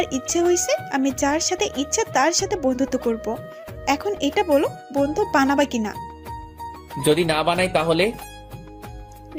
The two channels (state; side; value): identical; both; correlation 1.00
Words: ইচ্ছে হয়েছে, আমি যার সাথে ইচ্ছা তার সাথে বন্ধুত্ব করব। এখন এটা বলো, বন্ধু বানাবা কিনা? যদি না বানাই তাহলে?